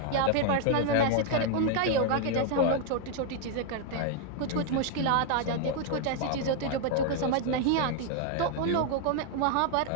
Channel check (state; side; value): different; both; correlation 0.00